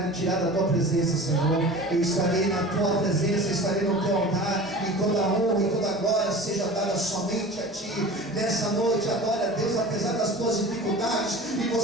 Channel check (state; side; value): noise; left; hum, 29 dB below the sound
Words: me tirar da tua presença, Senhor. Eu estarei na tua presença, estarei no teu altar, e toda a honra e toda a glória seja dada somente a ti. Nessa noite, adore a Deus apesar das tuas dificuldades, e